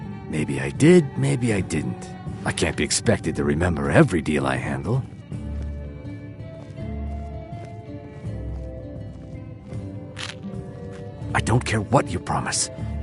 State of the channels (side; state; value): both; identical; correlation 1.00